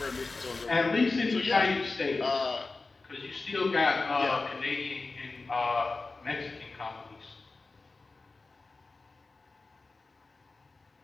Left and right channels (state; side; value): quieter; right; 3.7 dB